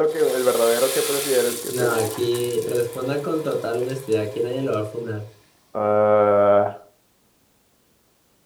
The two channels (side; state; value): both; identical; correlation 1.00